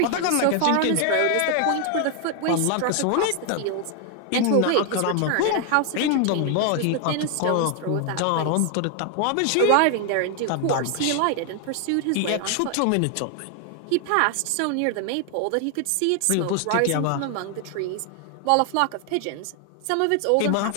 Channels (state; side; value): different; both; correlation 0.00